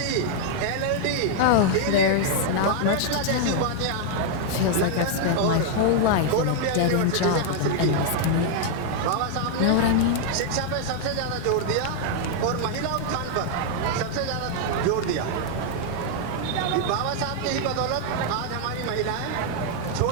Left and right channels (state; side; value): different; both; correlation 0.00